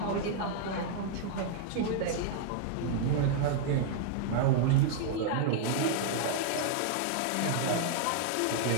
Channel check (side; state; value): both; different; correlation -0.01